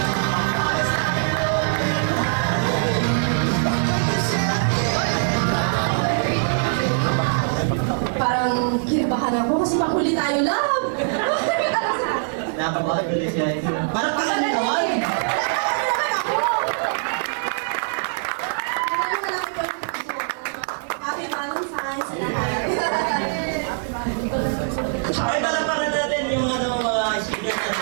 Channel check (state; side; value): silent; left; digital silence